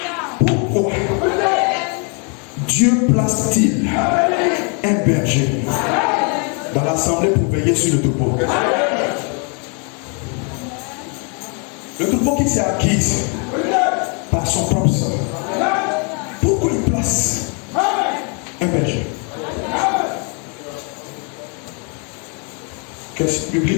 pourquoi Dieu place-t-il un berger dans l'assemblée pour veiller sur le troupeau? Le troupeau qui s'est acquis par son propre sang. Pourquoi il place un berger? Question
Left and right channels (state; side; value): quieter; right; 36.7 dB